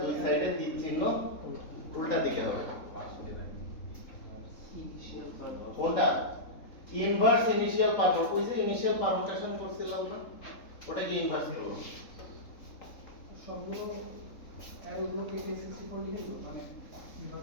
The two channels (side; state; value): right; late; 3.8 ms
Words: দুই সাইডে তীর চিহ্ন উল্টা দিকে হবে। ইনিশিয়াল কোনটা? Inverse initial permutation. ওই যে ইনিশিয়াল পারমুটেশন করছিলাম না, ওটাকে ইনভার্স করব। সবগুলো অ্যারোগুলোকে A64 লিখে দেবো, মানে